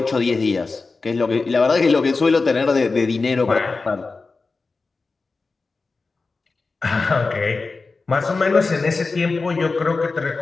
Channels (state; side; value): quieter; right; 4.0 dB